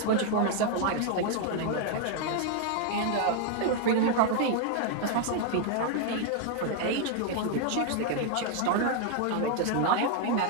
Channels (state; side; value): different; both; correlation 0.01